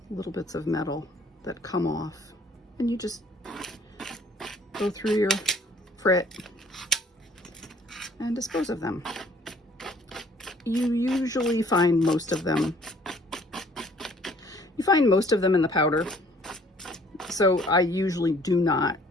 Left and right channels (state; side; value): normal; both; correlation 0.58